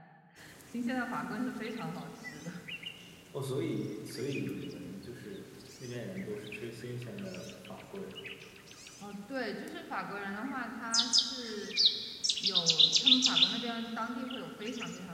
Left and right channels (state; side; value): identical; both; correlation 1.00